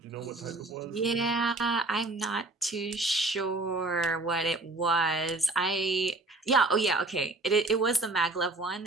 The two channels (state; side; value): quieter; left; 3.0 dB